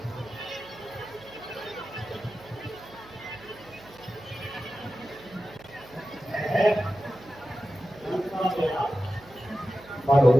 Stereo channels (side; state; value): right; noise; hum, 23 dB below the sound